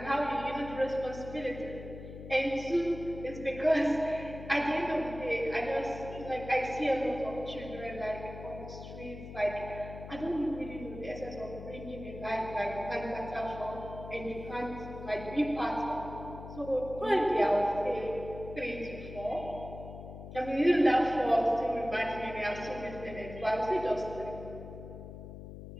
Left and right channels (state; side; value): noise; left; hum, 12 dB below the sound